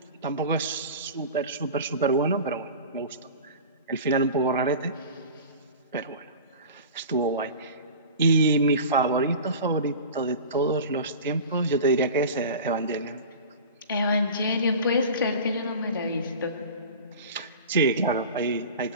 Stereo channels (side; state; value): both; inverted; correlation -0.35